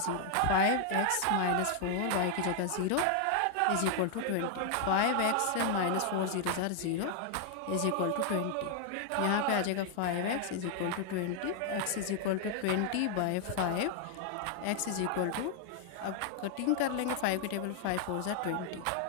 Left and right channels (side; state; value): both; different; correlation 0.00